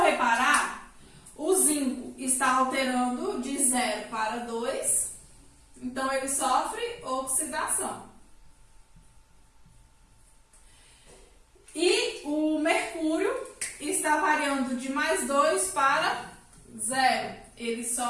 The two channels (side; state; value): both; identical; correlation 1.00